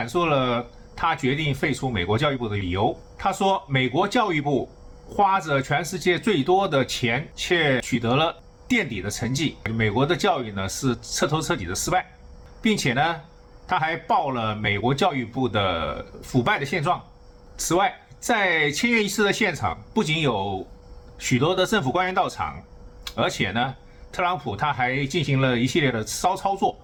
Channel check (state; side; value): identical; both; correlation 1.00